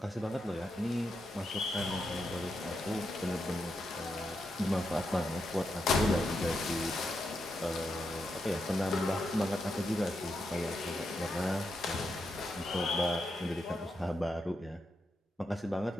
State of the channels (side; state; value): both; normal; correlation 0.84